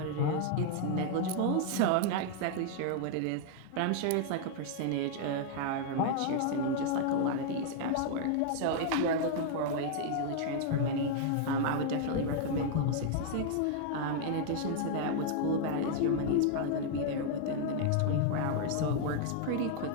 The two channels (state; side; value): different; both; correlation 0.00